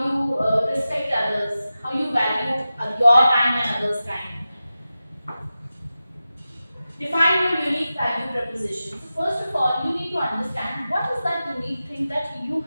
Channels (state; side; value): inverted; both; correlation -0.93